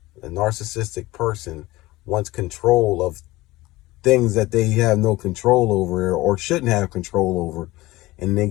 A narcissistic person wants control of things that they have no control over or shouldn't have control over, and they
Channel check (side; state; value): right; quieter; 19.1 dB